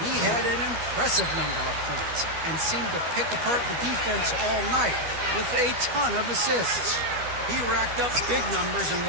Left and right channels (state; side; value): late; left; 12 ms